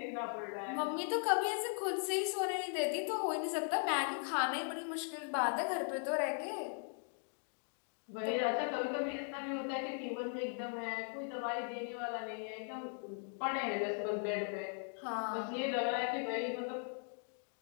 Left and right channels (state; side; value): silent; right; 52 dB below the other